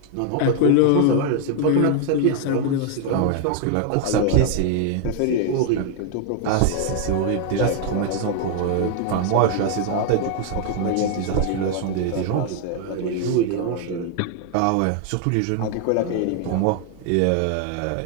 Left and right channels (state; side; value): different; both; correlation 0.00